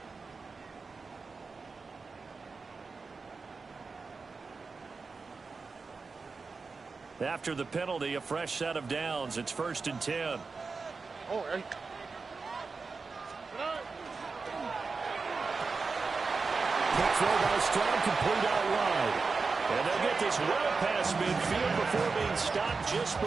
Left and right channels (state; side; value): quieter; left; 4.4 dB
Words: After the penalty, a fresh set of downs. It's 1st and 10. Quick throw by Stroud, complete out wide. And they'll get this well past midfield before being stopped just